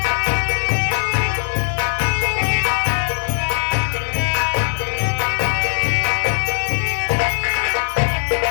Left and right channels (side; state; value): right; silent; 60 dB below the other